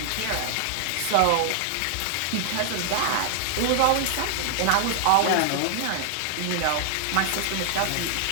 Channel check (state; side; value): different; both; correlation -0.01